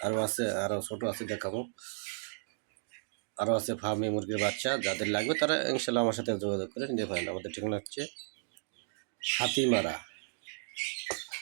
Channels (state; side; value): silent; left; digital silence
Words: আরও ছোট আছে, দেখাবো। আরও আছে ফার্মি মুরগির বাচ্চা। যাদের লাগবে তারা ইনশাল্লাহ আমার সাথে যোগাযোগ করে নিতে পারেন। আমাদের ঠিকানা হচ্ছে হাতিমারা।